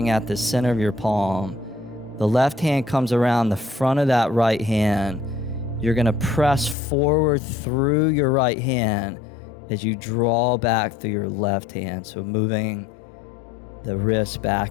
at the center of your palm. The left hand comes around the front of that right hand. You're going to press forward through your right hand as you draw back through your left hand. So moving the wrist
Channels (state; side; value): drops out; right; at 6.8 s